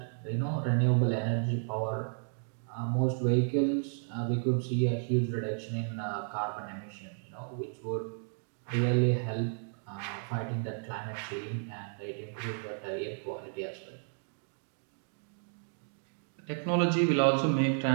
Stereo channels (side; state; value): left; silent; 56 dB below the other